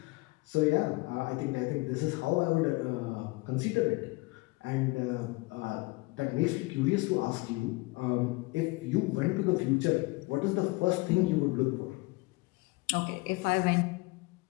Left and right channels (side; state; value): right; quieter; 23.8 dB